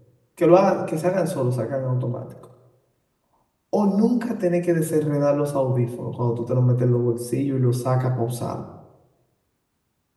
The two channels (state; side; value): identical; both; correlation 1.00